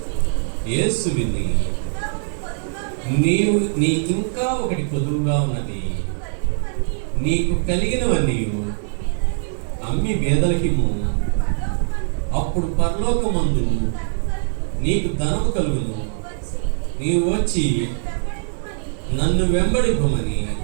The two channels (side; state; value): left; silent; digital silence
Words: యేసు విని నీకింకా ఒకటి కొదువుగా ఉన్నది, నీకు కలిగినవన్నీ అమ్మి బేదలకిమ్ము, అప్పుడు పరలోకమందు నీకు ధనము కలుగును, నీవు వచ్చి నన్ను వెంబడింపమని